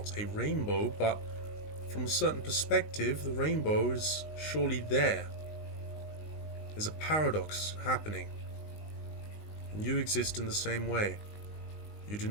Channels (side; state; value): right; late; 19 ms